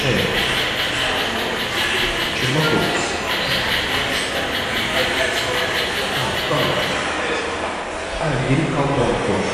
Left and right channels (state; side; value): identical; both; correlation 1.00